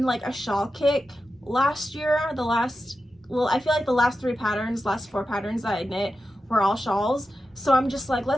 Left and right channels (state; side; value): normal; both; correlation 0.91